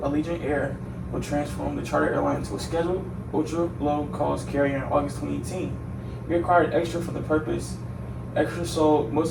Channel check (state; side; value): identical; both; correlation 1.00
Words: Allegiant Air, would transform the charter airline into a scheduled, ultra-low-cost carrier in August 2018. He acquired Extra for the purpose. Extra sold